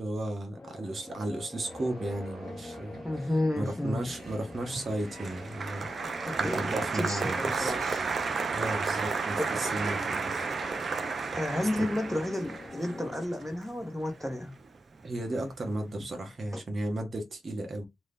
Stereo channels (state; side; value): normal; both; correlation 0.89